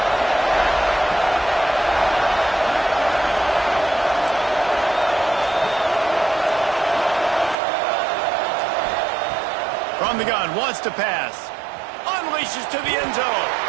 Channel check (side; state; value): left; drops out; at 7.6 s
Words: From the gun, wants to pass. Unleashes to the end zone.